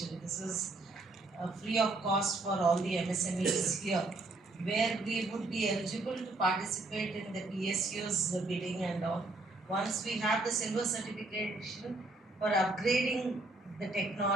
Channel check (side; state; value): left; quieter; 3.0 dB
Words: this is free of cost for all the MSMEs here, where we would be eligible to participate in the PSU's bidding and all. Once we have the silver certification for upgrading the